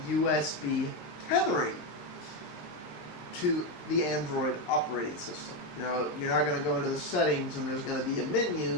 USB tethering to the Android operating system. You know, you're not going to go into the settings and there's going to be a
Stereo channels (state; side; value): late; right; 20 ms